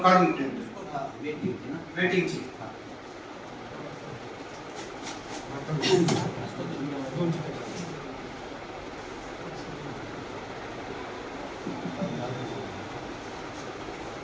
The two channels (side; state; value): both; identical; correlation 1.00